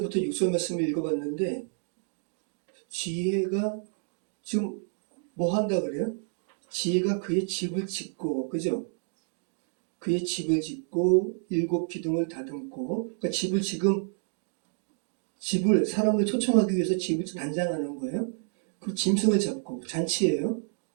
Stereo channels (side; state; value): left; silent; 58 dB below the other